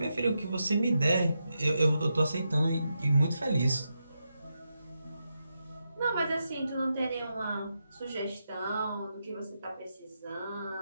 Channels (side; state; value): both; inverted; correlation -0.86